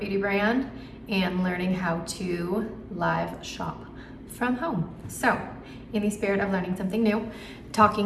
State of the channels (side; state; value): both; identical; correlation 1.00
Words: brand and learning how to live shop from home. So, in the spirit of learning something new,